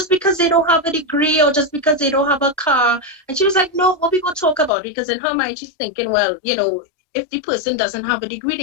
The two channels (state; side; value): drops out; right; at 4.7 s